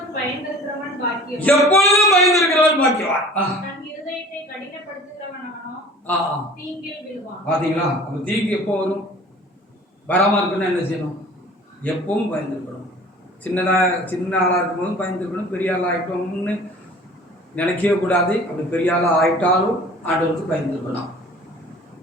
பயந்திருக்கிறவன் பாக்கியவான். எப்பொழுதும் பயந்திருக்கிறவன் பாக்கியவான். தன் இருதயத்தை கடினப்படுத்துகிறவனோ தீங்கில் விழுவான். பாத்தீங்களா? அப்ப தீங்கு எப்போ வரும்? வராம இருக்குன்னா என்ன செய்யணும்? எப்பவும் பயந்துருக்கணும். சின்ன ஆளா இருக்கும்போது பயந்துருக்கணும். பெரிய ஆளா ஆயிட்டோம்னு நினைக்கவே கூடாது. அப்படி பெரிய ஆளா ஆயிட்டாலும் ஆண்டவருக்கு பயந்துருக்கணும்.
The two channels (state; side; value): normal; both; correlation 0.45